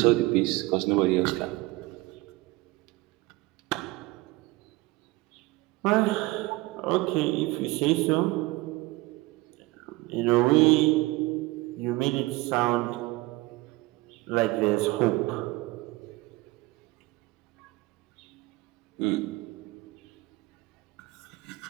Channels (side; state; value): left; quieter; 20.7 dB